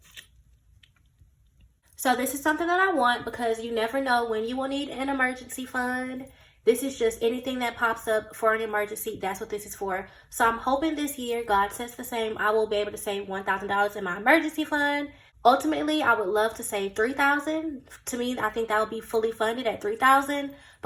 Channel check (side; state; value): both; identical; correlation 1.00